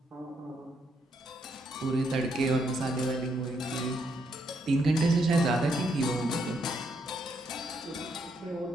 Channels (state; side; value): normal; both; correlation 0.76